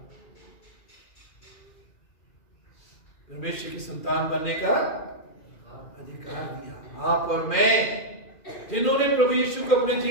परमेश्वर की संतान बनने का अधिकार दिया। आप और मैं जिन्होंने प्रभु यीशु को अपने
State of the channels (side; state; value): right; late; 2.4 ms